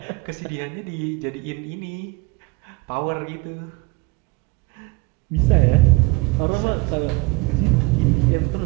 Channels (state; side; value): quieter; left; 23.6 dB